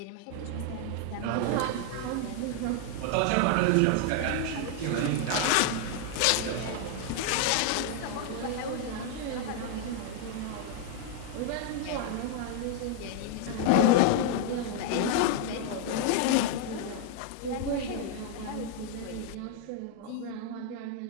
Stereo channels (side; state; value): both; different; correlation 0.00